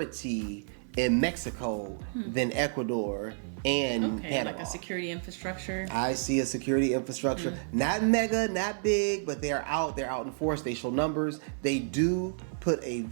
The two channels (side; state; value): left; silent; 58 dB below the other